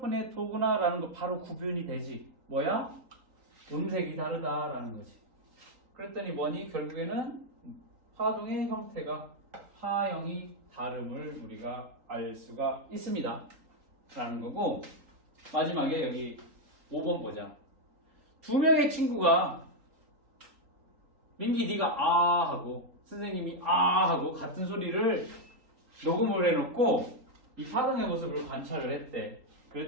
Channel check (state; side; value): late; left; 3.8 ms